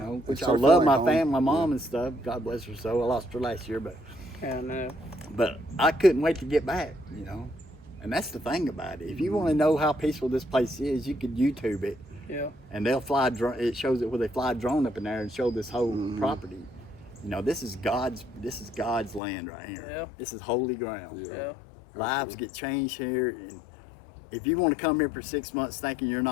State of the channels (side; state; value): right; drops out; at 19.2 s